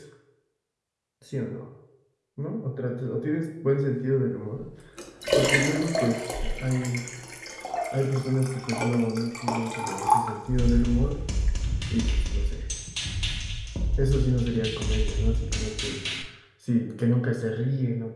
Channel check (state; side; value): identical; both; correlation 1.00